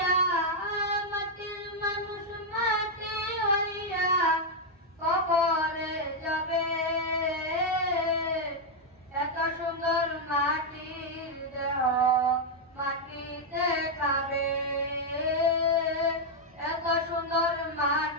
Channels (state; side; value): normal; both; correlation -0.01